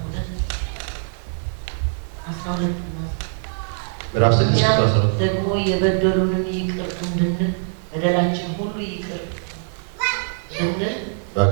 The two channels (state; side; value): silent; left; digital silence